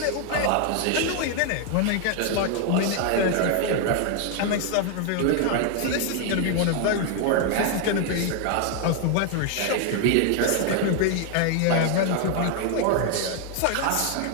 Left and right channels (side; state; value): both; different; correlation 0.00